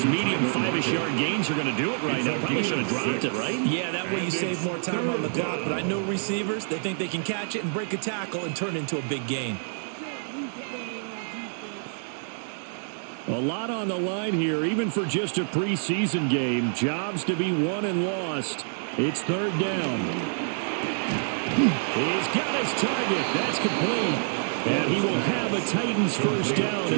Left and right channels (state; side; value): silent; left; digital silence